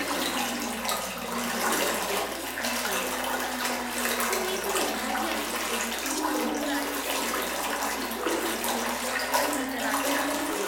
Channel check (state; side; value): identical; both; correlation 1.00